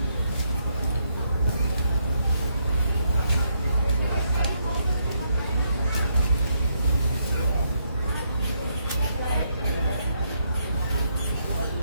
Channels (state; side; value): inverted; both; correlation -0.77